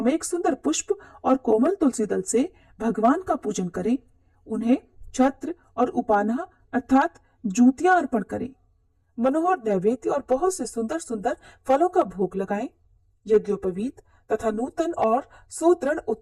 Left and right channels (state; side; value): identical; both; correlation 1.00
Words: सुंदर पुष्प और कोमल तुलसी दल से भगवान का पूजन करें। उन्हें छत्र और उपाना अर्थात जूतियां अर्पण करें। मनोहर नैवेद्य और बहुत से सुंदर सुंदर फलों का भोग लगाएं। यज्ञोपवीत तथा नूतन और सुदृढ़